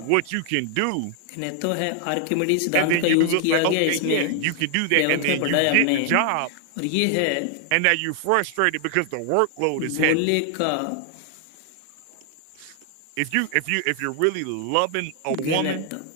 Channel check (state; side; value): different; both; correlation 0.00